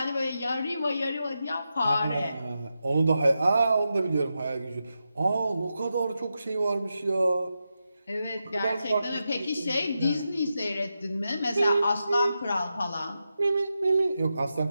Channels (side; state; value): both; inverted; correlation -0.88